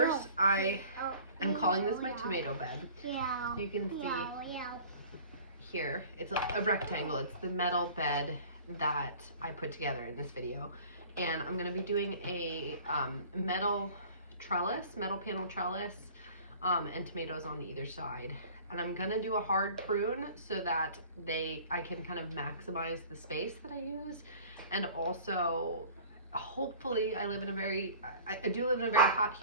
I am calling this my tomato bed. You can see here, it's a rectangle. It's the metal bed that I put together in this video. And I'm going to be doing a metal panel trellis and tomatoes on either side. And I'm gonna do a hard prune so that I can kind of maximize the space that I use, and also hopefully I do live in a very hot,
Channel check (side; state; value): both; inverted; correlation -0.45